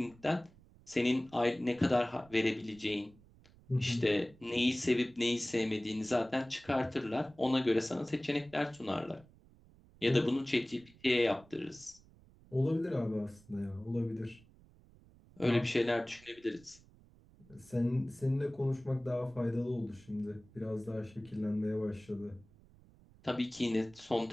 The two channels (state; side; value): noise; right; rumble, 26 dB below the sound